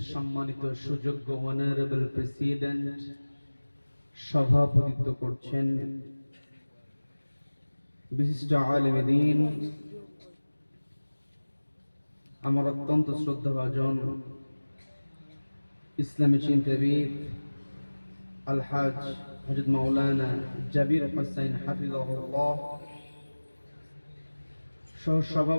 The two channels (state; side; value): inverted; both; correlation -1.00